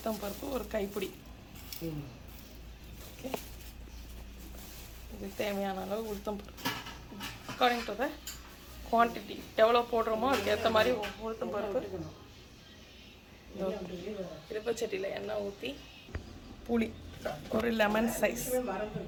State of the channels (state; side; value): identical; both; correlation 1.00